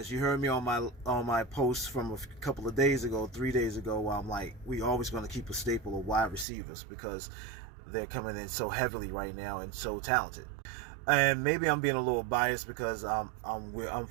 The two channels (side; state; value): left; drops out; at 6.5 s